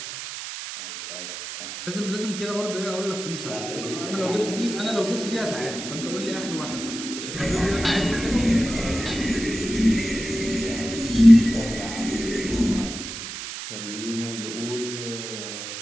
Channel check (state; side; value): noise; right; hiss, 8 dB below the sound